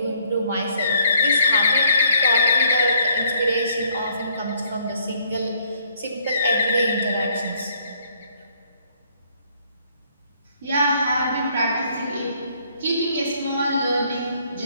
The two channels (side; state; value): both; inverted; correlation -0.67